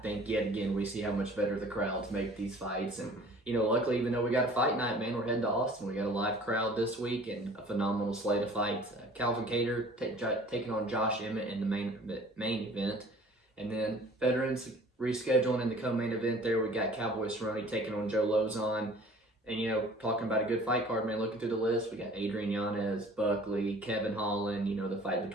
yet again we see how much better the crowds make these fights. And luckily, even though we got a fight night, man, we're heading to Austin. We got a live crowd this week and a phenomenal slate of fights. Calvin Kattar taking on Josh Emmett in the main event. And then veterans rescheduling in the co-main event there. We got Cowboy Cerrone taking on Joe Lauzon. And, talking about a good fight card, man, looking through the list, we got Adrian Yanez, Buckley, Kevin Holland, the fight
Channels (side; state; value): both; normal; correlation 0.49